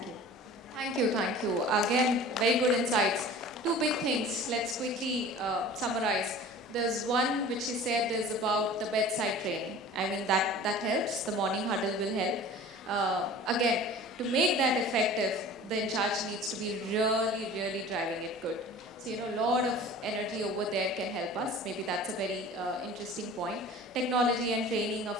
you. Thank you, thank you. Again, very good insights. Two big things, let's quickly summarize. There's one which you said is about the bedside training. I mean, that helps, the morning huddle will help. Again, to make that effective, the in charge needs to be really driving it good. So, a lot of energy over there can help us. Maybe that's a very interesting point. Technology and training, of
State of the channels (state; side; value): normal; both; correlation 0.42